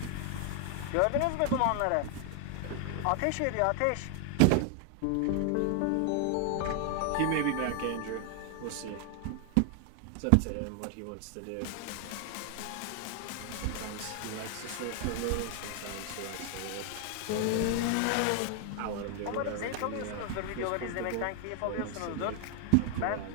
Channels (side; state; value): both; different; correlation 0.00